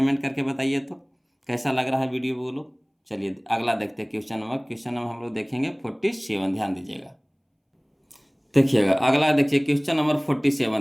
करके बताइए तो कैसा लग रहा है वीडियो बोलो। चलिए अगला देखते हैं क्वेश्चन नंबर हम लोग देखेंगे 47, ध्यान दीजिएगा। देखिएगा अगला देखिए क्वेश्चन नंबर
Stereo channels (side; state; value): both; identical; correlation 1.00